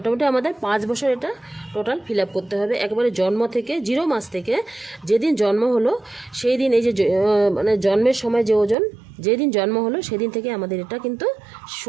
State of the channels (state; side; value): drops out; left; at 8.8 s